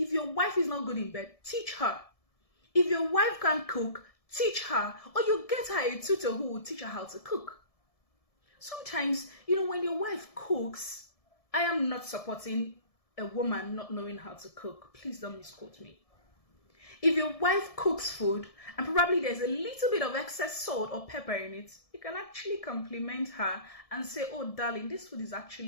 your wife is not good in bed, teach her. If your wife can't cook, teach her. Or you get her a tutor who will teach her how to cook. Sometimes, when your wife cooks, I am not supporting a woman not knowing how to cook. Please don't misquote me. If your wife cooks food and probably there's a little bit of excess salt or pepper in it, you can actually compliment her and say, oh darling, this food is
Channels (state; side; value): late; right; 1.7 ms